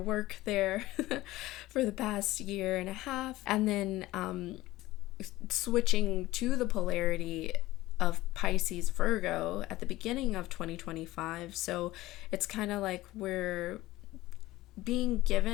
there for the past year and a half, and then switching to the polarity of Pisces Virgo at the beginning of 2025. So it's kind of like we're being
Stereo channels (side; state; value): right; quieter; 17.3 dB